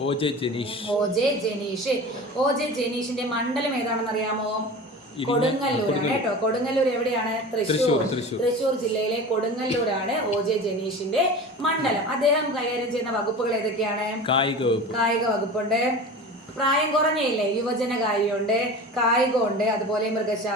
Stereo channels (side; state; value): both; normal; correlation 0.34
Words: ഒ ജെ ജനീഷിന്റെ മണ്ഡലം ഏതാണെന്ന് അറിയാമോ? കൊടുങ്ങല്ലൂരാണ് കേട്ടോ. കൊടുങ്ങല്ലൂർ എവിടെയാണ്? തൃശ്ശൂർ ജില്ലയിലെ കൊടുങ്ങല്ലൂരാണ് ഒ ജെ ജനീഷിന്റെ മണ്ഡലം. അദ്ദേഹം കൈകാര്യം ചെയ്യുന്ന വകുപ്പുകൾ ഏതൊക്കെയാണ്? കായിക വകുപ്പുണ്ട്, പ്രായം കുറഞ്ഞയില്ലേ, യുവജന കാര്യമുണ്ട്, കായികമുണ്ട്, അതുപോലെ